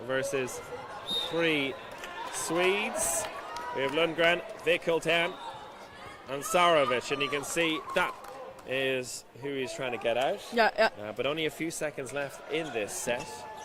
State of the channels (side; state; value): both; identical; correlation 1.00